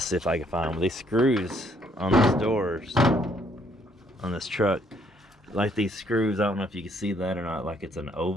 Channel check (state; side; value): normal; both; correlation 0.67